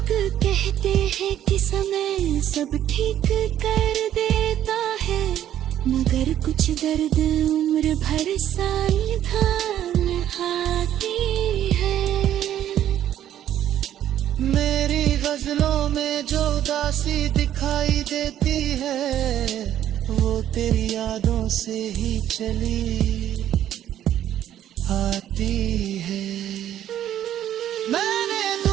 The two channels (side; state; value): left; quieter; 11.4 dB